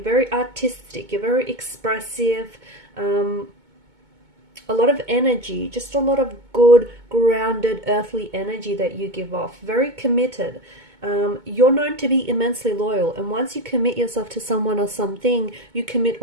very artistic, you're very expressive, a lot of energy, just a lot of good, grounded, earthly energy that you give off. Very committed. You're known to be immensely loyal, and once you commit yourself to someone or something, you commit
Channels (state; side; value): late; left; 2.2 ms